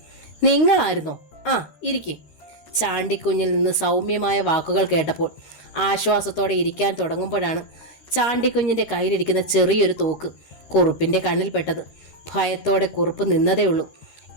നിങ്ങളായിരുന്നോ? ആ, ഇരിക്കേ. ചാണ്ടിക്കുഞ്ഞിൽ നിന്ന് സൗമ്യമായ വാക്കുകൾ കേട്ടപ്പോൾ ആശ്വാസത്തോടെ ഇരിക്കാൻ തുടങ്ങുമ്പോഴാണ് ചാണ്ടിക്കുഞ്ഞിൻ്റെ കയ്യിലിരിക്കുന്ന ചെറിയൊരു തോക്ക് കുറുപ്പിൻ്റെ കണ്ണിൽപ്പെട്ടത്. ഭയത്തോടെ കുറുപ്പ് നിന്നതേ ഉള്ളൂ.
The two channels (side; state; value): right; late; 13 ms